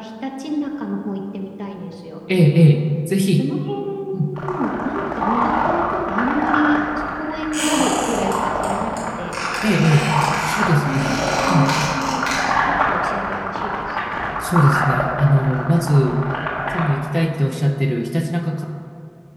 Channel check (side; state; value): both; identical; correlation 1.00